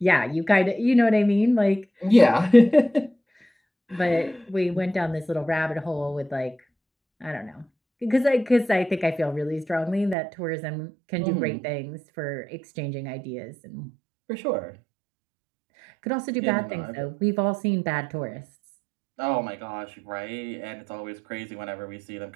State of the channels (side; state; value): left; drops out; at 10.2 s